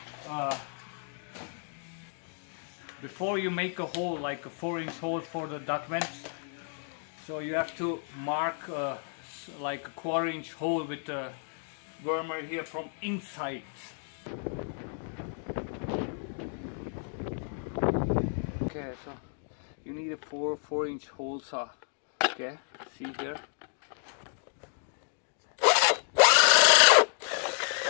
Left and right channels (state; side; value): silent; right; 57 dB below the other